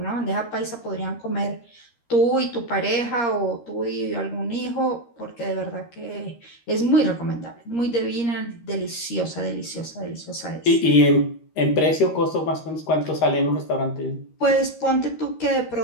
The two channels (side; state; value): right; late; 13 ms